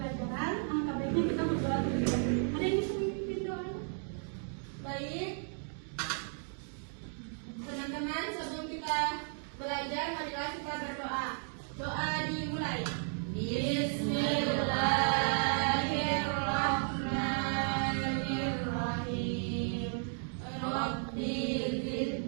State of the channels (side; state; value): left; silent; 55 dB below the other